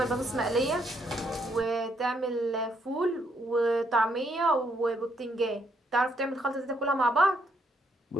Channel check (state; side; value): normal; both; correlation 0.73